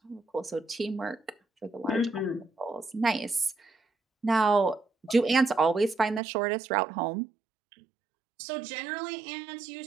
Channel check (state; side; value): drops out; left; at 6.2 s